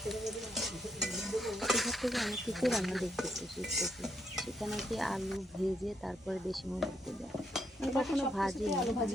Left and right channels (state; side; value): normal; both; correlation 0.76